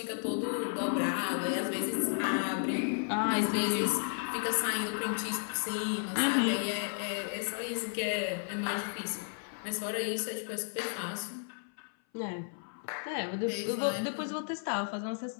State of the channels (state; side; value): silent; right; 56 dB below the other